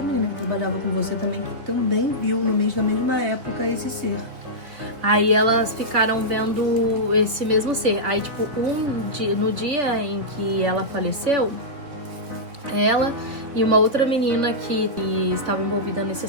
menina que trabalhava com você também, que também viu no mês da mesma época esse ser. Aí elas ficaram vendo esse mesmo ser. Aí, tipo, no dia em que ela faleceu, ela e uma outra menina que estava envolvida nesse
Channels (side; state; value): left; late; 3.1 ms